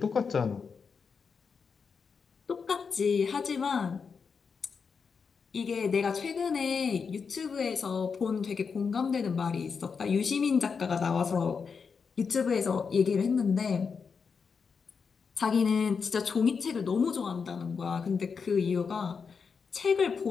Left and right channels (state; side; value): quieter; right; 5.7 dB